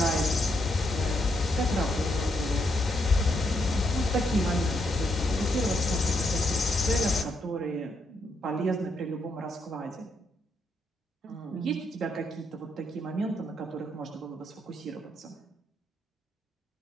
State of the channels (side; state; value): both; normal; correlation 0.78